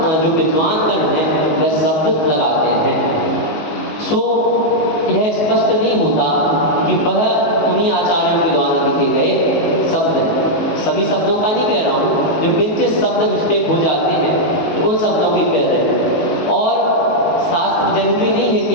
जो विद्वान गण हैं वह शब्द लगाते हैं। सो यह स्पष्ट नहीं होता कि वह उन्हीं आचार्यों के द्वारा लिखे गए शब्द हैं। सभी शब्दों का नहीं कह रहा हूँ, जो किंचित शब्द मिस्टेक हो जाते हैं उन शब्दों की कह रहे हैं। और शास्त्र जरूरी नहीं है कि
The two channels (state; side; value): late; right; 19 ms